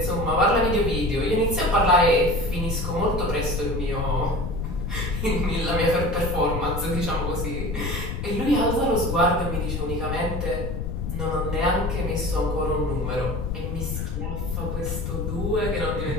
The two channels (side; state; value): left; noise; rumble, 3 dB below the sound